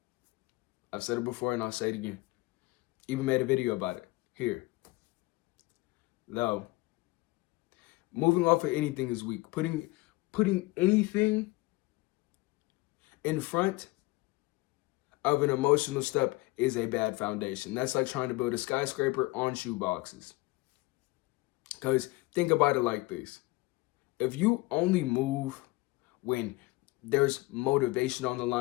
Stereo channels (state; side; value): quieter; right; 21.6 dB